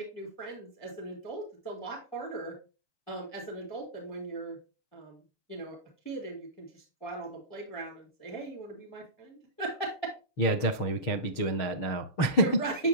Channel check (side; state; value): right; late; 6.5 ms